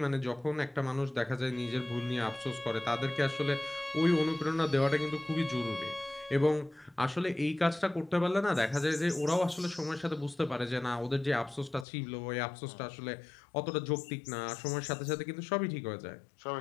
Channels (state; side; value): drops out; right; at 11.9 s